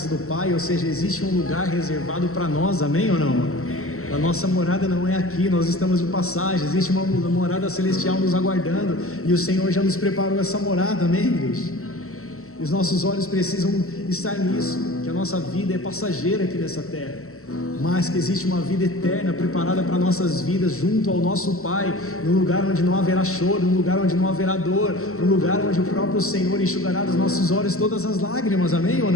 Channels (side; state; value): right; late; 0.63 ms